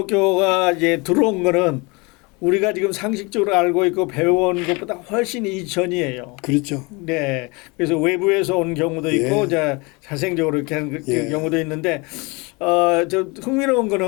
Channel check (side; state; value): right; quieter; 27.4 dB